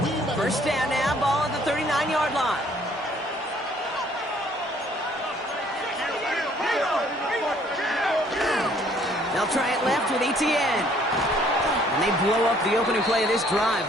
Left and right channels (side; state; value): both; normal; correlation 0.61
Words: 1st down now, ball at the 39-yard line. They'll try it left with ETN. And they blow up the opening play of this drive.